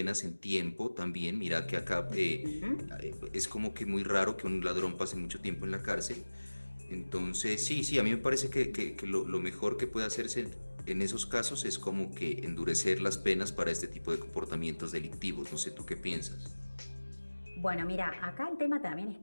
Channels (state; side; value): inverted; both; correlation -1.00